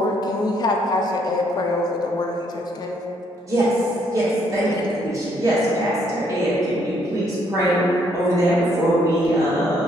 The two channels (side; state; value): both; normal; correlation 0.69